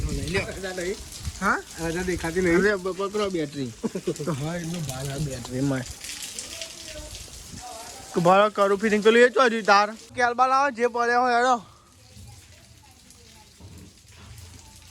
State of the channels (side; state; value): both; identical; correlation 1.00